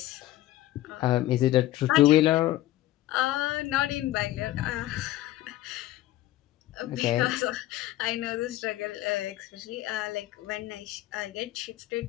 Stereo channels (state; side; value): quieter; right; 15.2 dB